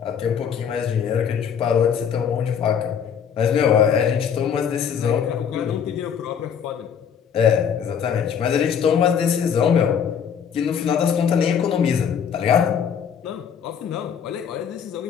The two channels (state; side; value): quieter; right; 7.7 dB